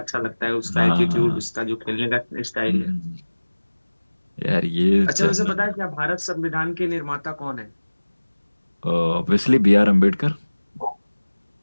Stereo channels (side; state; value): both; inverted; correlation -1.00